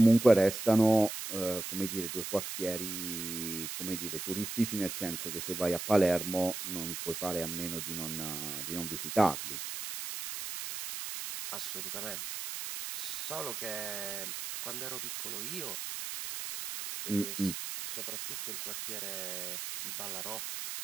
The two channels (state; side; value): noise; right; hiss, 6 dB below the sound